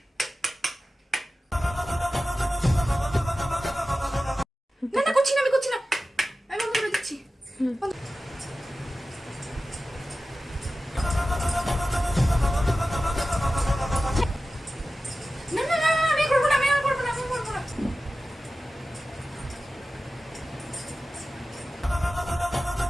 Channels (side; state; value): both; normal; correlation 0.95